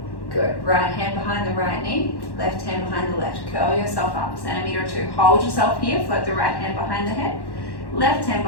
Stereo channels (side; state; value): right; late; 1.1 ms